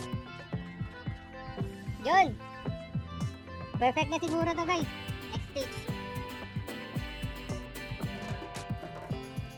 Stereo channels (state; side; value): identical; both; correlation 1.00